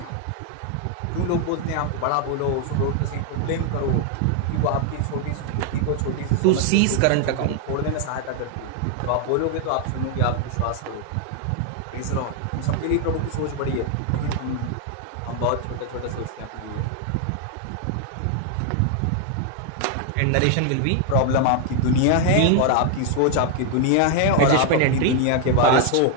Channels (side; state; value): both; different; correlation 0.00